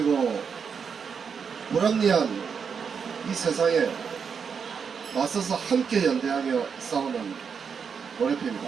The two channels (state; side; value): quieter; left; 6.4 dB